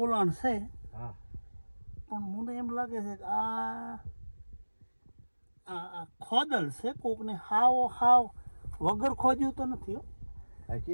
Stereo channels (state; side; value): inverted; both; correlation -1.00